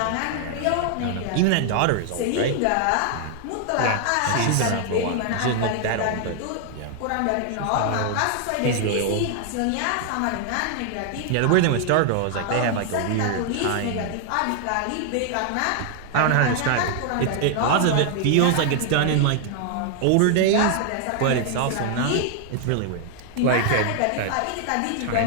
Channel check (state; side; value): different; both; correlation 0.00